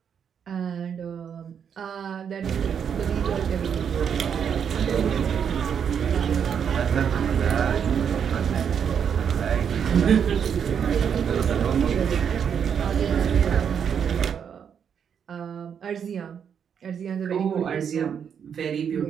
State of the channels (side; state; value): left; quieter; 7.7 dB